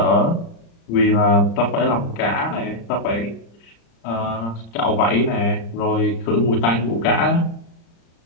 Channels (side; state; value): right; late; 35 ms